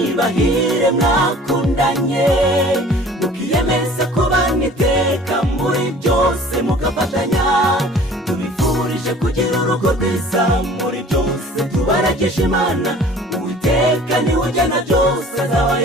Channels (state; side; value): normal; both; correlation 0.48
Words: bahire mwakundanye, mukiyemeza kubana iteka muri byose mugafatanya. Tubifurije kugira urugo rwiza muri byose, tubaragisha Imana Uwiteka niwe ugena byose,